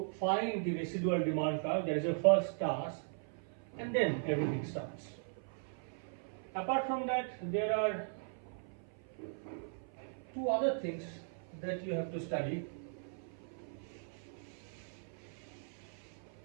find the residual demand curve. That is your first task, and then everything starts. Apart from that, there are two other things that you have to study,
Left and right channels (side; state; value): left; silent; 52 dB below the other